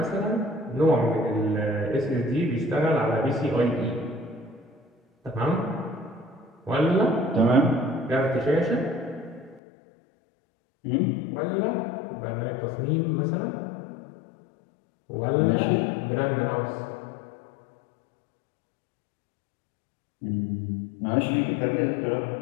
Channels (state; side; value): drops out; right; at 9.6 s